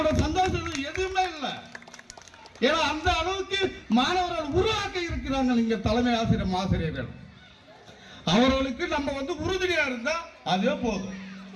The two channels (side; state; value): both; identical; correlation 1.00